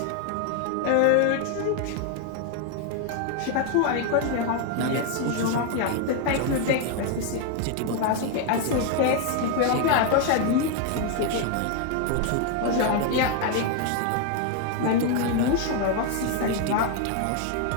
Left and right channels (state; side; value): different; both; correlation 0.00